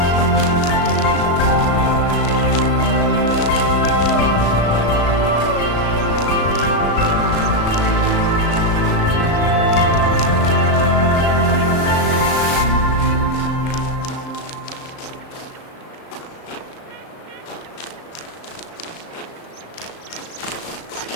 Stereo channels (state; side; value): late; right; 35 ms